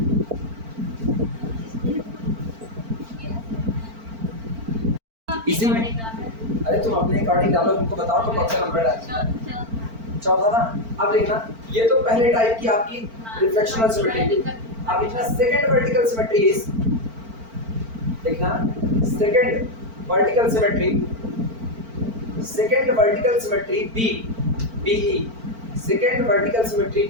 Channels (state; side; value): late; left; 4.4 ms